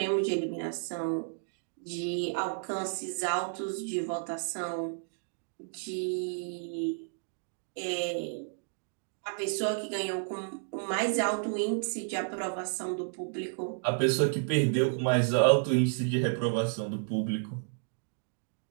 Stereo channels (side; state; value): left; silent; digital silence